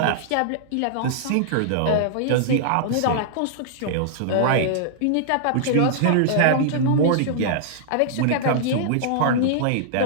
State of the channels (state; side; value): different; both; correlation -0.01